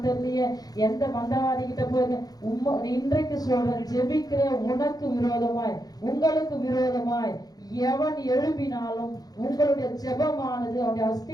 தெரியலையே, எந்த மந்திரவாதி கிட்ட போய் இன்றைக்கு சொல்ற ஜெபிக்கிற உனக்கு விரோதமாய் உங்களுக்கு விரோதமாய் எவன் எழுப்பினாலும் உங்களுடைய ஜெபமானது அவனுடைய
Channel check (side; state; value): right; late; 0.19 ms